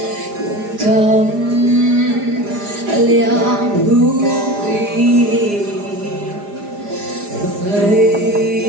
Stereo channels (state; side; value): late; left; 4.9 ms